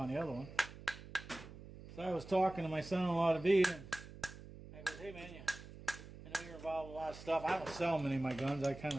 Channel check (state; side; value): noise; right; hum, 15 dB below the sound